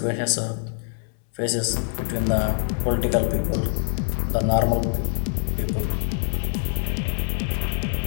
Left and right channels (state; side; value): silent; right; 58 dB below the other